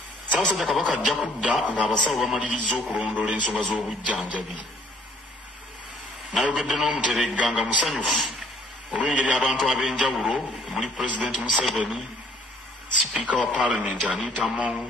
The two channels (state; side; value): normal; both; correlation 0.60